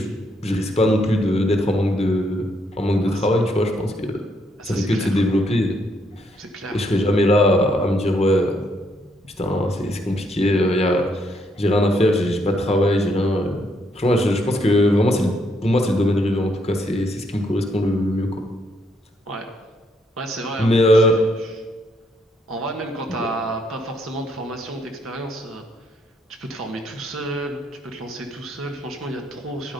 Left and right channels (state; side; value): normal; both; correlation 0.73